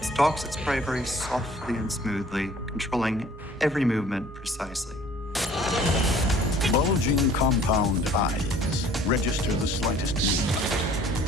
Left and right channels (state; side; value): normal; both; correlation 0.53